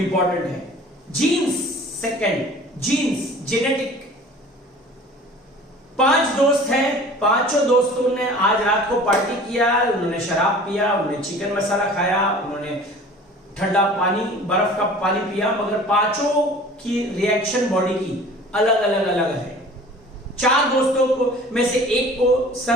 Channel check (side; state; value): both; normal; correlation 0.45